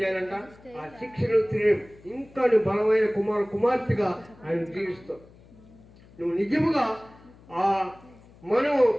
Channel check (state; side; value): noise; left; hum, 25 dB below the sound